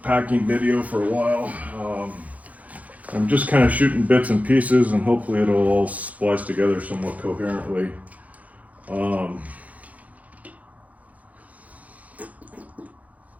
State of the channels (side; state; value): left; late; 0.072 ms